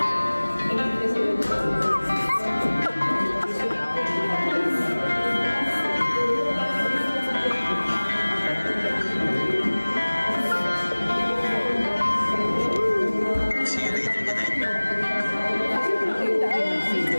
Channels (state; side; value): inverted; both; correlation -1.00